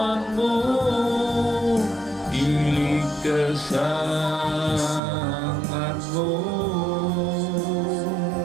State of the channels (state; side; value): drops out; left; at 5.0 s